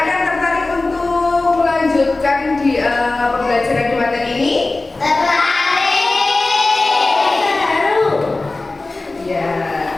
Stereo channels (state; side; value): quieter; right; 3.2 dB